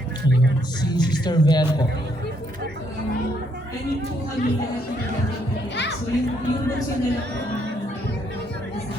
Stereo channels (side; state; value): both; normal; correlation 0.72